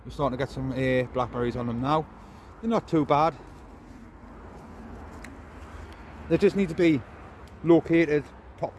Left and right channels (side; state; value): both; identical; correlation 1.00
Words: we're starting to get some blackberries on them now. They're not too bad. They just need to be located